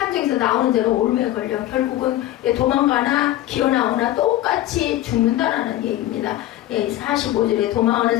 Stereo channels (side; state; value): right; quieter; 14.3 dB